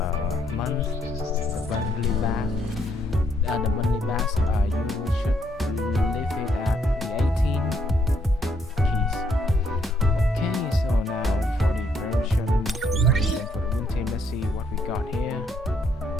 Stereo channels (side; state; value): both; normal; correlation 0.72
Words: monthly bass, you should leave it at the 18 keys. Okay, so now for the version and for the win team, let's see what we got here.